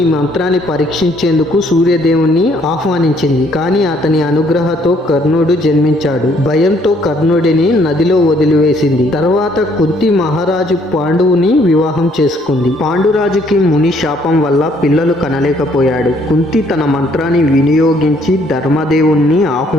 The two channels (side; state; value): both; normal; correlation 0.65